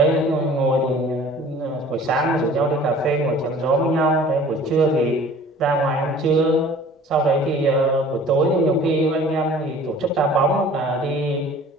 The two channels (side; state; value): both; normal; correlation 0.48